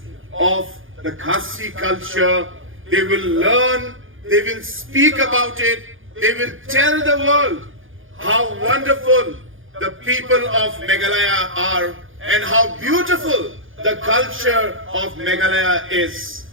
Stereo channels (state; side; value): late; left; 0.58 ms